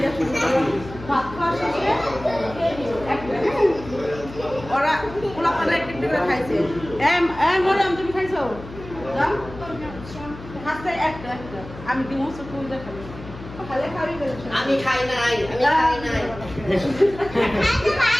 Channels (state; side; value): noise; left; hum, 15 dB below the sound